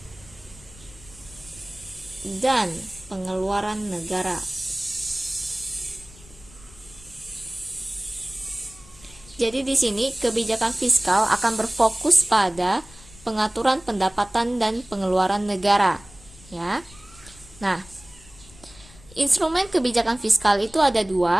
dan pengeluaran negara. Jadi di sini kebijakan fiskal akan berfokus pada pengaturan pendapatan dan pengeluaran negara, ya. Nah, instrumen kebijakan fiskal itu ada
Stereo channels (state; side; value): noise; left; rumble, 23 dB below the sound